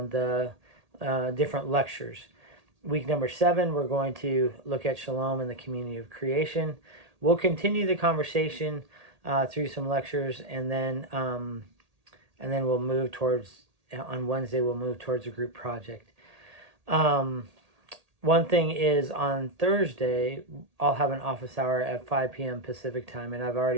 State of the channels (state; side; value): late; left; 1.8 ms